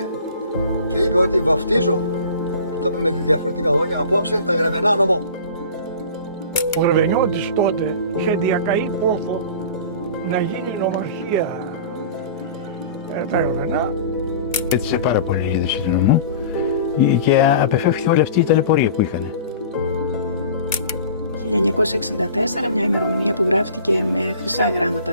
και είπε ότι βαφτίζω, το είπε με διαφορετικά λόγια, απόψε τα Γραβενά νομό. Ο Γραβενιώτης τότε είχε διακαεί πόθο να γίνει νομαρχία τα Γραβενά. Έτσισε πάρα πολύ η είδηση του νομού και απεφεύχθηκε όλη αυτή η ταλαιπωρία που είχαν. 1964, μια ημερομηνία που γράφτηκε με χρυσά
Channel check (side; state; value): both; inverted; correlation -0.40